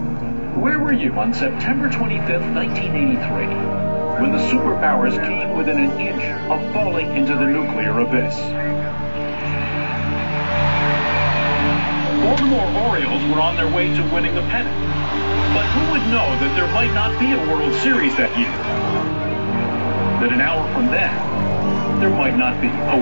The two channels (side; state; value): both; inverted; correlation -1.00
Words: Where were you on September 25th, 1983, when the superpowers came within an inch of falling into the nuclear abyss? Baltimore Orioles were on their way to winning the pennant. But who would know that there might not be a World Series that year? That an hour from then, there might not be a